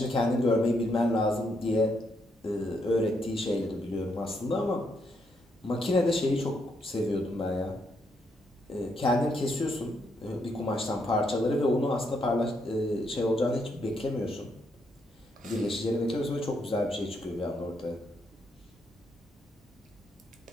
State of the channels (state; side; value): normal; both; correlation 0.77